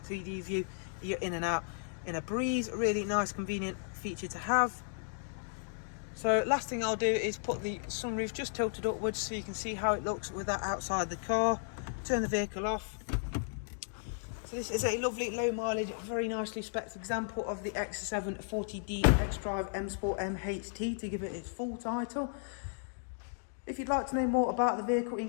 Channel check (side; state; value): right; silent; digital silence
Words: 3D view, you're in and out in a breeze. Really nice, convenient feature to have. So last thing I'll do is put the sunroof just tilted upwards so you can see how it looks with that outside the car. Turn the vehicle off. So this is a lovely low mileage, very nicely spec'd example of the X7 40D XDRIVE M Sport MHT, to give it its full title. If you'd like to know more about the vehicle,